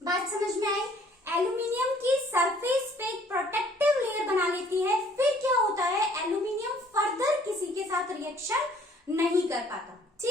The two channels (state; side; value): normal; both; correlation 0.58